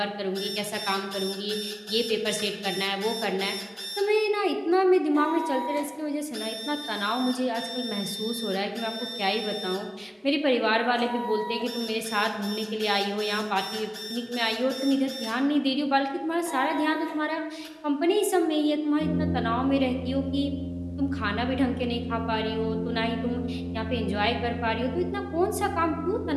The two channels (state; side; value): identical; both; correlation 1.00